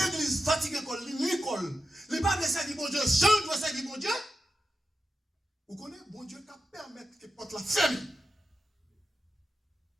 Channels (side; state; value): both; normal; correlation 0.90